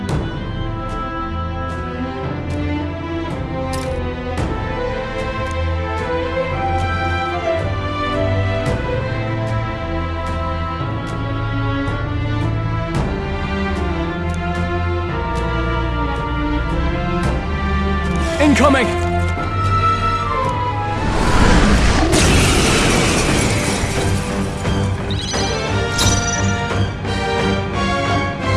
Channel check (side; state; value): both; identical; correlation 1.00